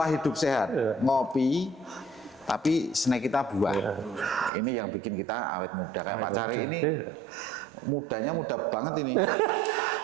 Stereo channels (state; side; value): drops out; left; at 4.5 s